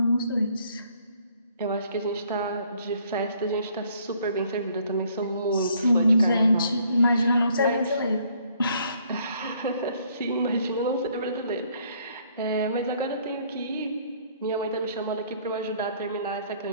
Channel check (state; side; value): inverted; both; correlation -0.64